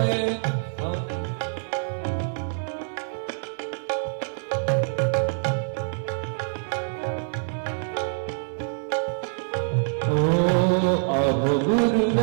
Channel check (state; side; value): silent; left; 57 dB below the other